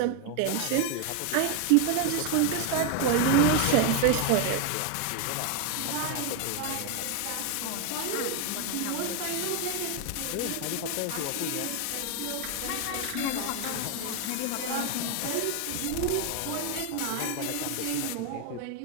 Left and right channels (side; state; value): both; different; correlation 0.01